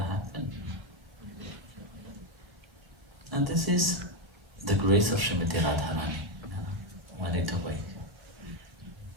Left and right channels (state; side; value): late; left; 1.1 ms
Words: And this is the grace of Srimati Radharani when it awake.